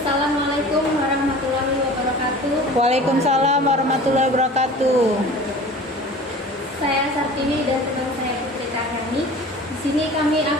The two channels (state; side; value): normal; both; correlation 0.41